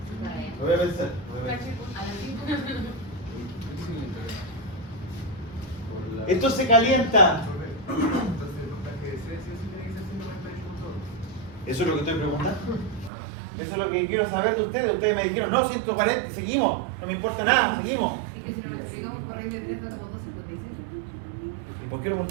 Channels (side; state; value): left; drops out; at 13.1 s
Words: Lo voy a pensar. A las 5. Esto se calienta. Entonces el voltaje de C sí tiene que ser 148 Eso es lo que estoy preguntando. Eso es lo que quiero saber de ustedes. Ustedes me dijeron, no, 140, seguimos. No me importa nada, seguimos. Es que si no lo explicamos por raíz de 3 da como 2.56. ¿Y por qué lo